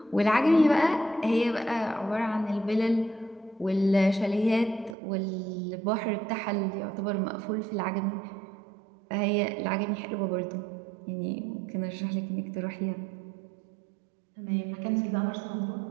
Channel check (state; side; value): drops out; left; at 5.0 s